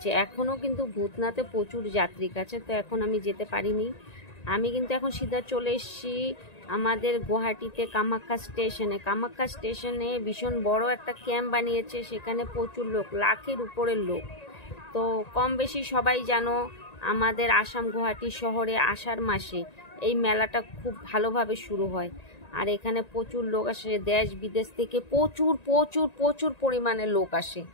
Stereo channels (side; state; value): right; late; 1.9 ms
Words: এখনও কিন্তু ভূতনাথে প্রচুর যাত্রীক আছে। তো এখন আমি যেতে পারিনি। আমি কিন্তু এখন সিধা চলে এসেছি আমাদের গুয়াহাটিতে কামাখ্যা স্টেশনে। কামাখ্যা স্টেশনে ভীষণ বড় একটা ক্যাম্প বানিয়েছে, সেখানে প্রচুর লোক, লাখের উপরের লোক। তো কম বেশি সবাই জানো আমাদের আসাম গুয়াহাটি শহরে আষাঢ় মাসে এই মেলাটা খুব ভালোভাবে শুরু হয়। আর এখানে প্রচুর লোক আসে, দেশ বিদেশ থেকে প্রচুর প্রচুর প্রচুর পরিমাণে লোক আসে।